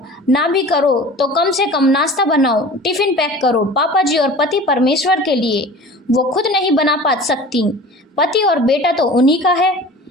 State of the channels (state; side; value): normal; both; correlation 0.40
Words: ना भी करो तो कम से कम नाश्ता बनाओ, टिफिन पैक करो पापा जी और पति परमेश्वर के लिए। वो खुद नहीं बना पा सकती, पति और बेटा तो उन्हीं का है।